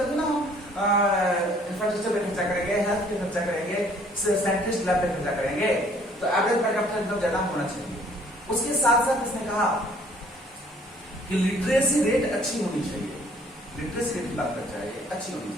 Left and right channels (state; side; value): normal; both; correlation 0.59